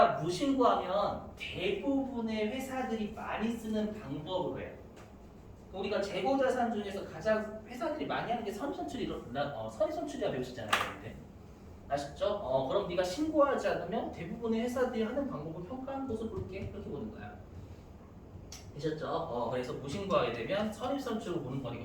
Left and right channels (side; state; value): both; identical; correlation 1.00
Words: 무신고하면 대부분의 회사들이 많이 쓰는 방법으로 해요. 우리가 재고자산 중에서 가장 회사들이 많이 하는 게 선입선출이라 배우셨잖아요. 근데. 아셨죠? 그럼 네가 신고하지 않으면 대부분의 회사들이 하는 방법을 평가하는 것을 볼게. 그렇게 보는 거야. 되셨죠? 그래서 무신고하게 되면 선입선출로 보는 거니까